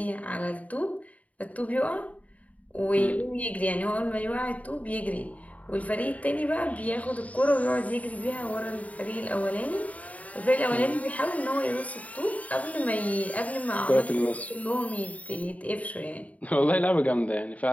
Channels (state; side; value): late; right; 0.069 ms